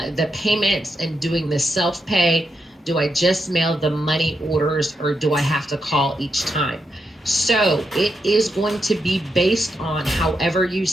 the payments and doing the self-pay, do I just mail the money orders or do I have to call each time? So it is going to be based on however you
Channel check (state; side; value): normal; both; correlation 0.83